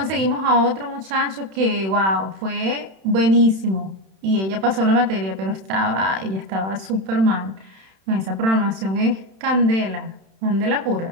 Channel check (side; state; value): left; late; 31 ms